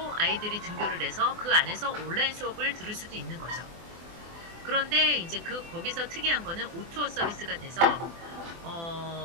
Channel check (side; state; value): left; late; 24 ms